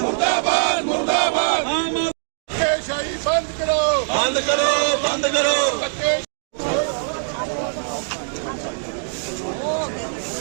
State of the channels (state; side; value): silent; left; digital silence